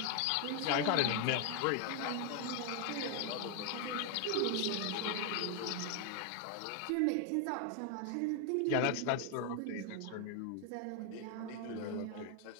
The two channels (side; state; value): both; different; correlation 0.00